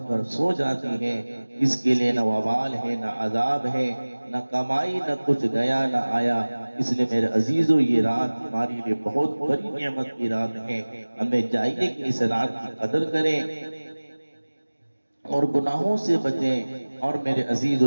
کر سو جاتی ہے، اس کے لیے نہ وبال ہے، نہ عذاب ہے، نہ کمائی، نہ کچھ گیا نہ آیا۔ اس لیے میرے عزیزوں، یہ رات ہمارے لیے بہت بڑی نعمت کی رات ہے، ہمیں چاہیے کہ اس رات کی قدر کریں اور گناہوں سے بچیں، اور میرے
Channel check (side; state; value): both; inverted; correlation -1.00